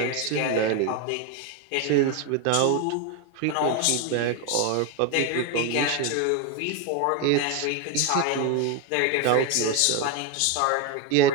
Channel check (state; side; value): different; both; correlation 0.02